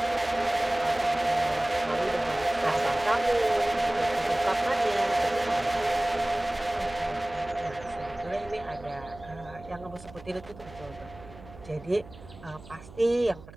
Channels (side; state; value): right; noise; hum, 18 dB below the sound